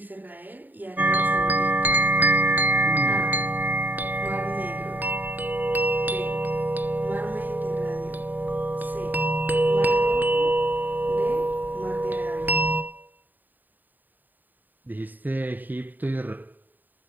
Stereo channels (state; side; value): late; left; 0.088 ms